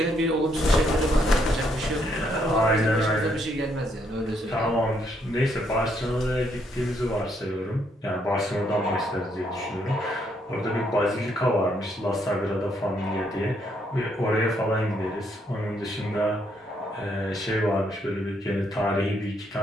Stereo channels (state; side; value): normal; both; correlation 0.73